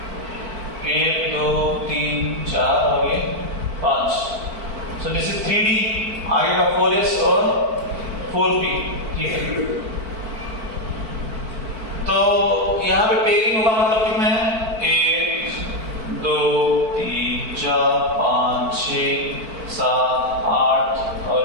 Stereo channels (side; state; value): left; late; 4.5 ms